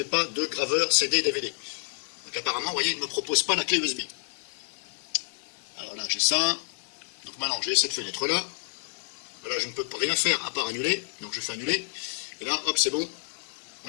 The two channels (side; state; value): right; silent; 59 dB below the other